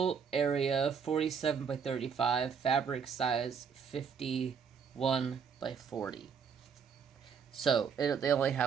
area 47 by 35, fabric size 51 by 40. So they only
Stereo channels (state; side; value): quieter; left; 6.6 dB